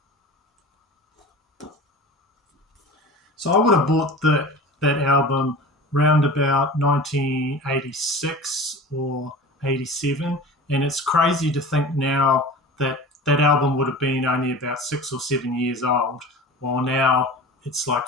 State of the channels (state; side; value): normal; both; correlation 0.36